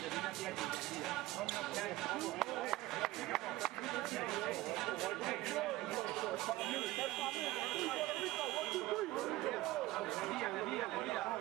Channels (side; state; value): left; quieter; 17.7 dB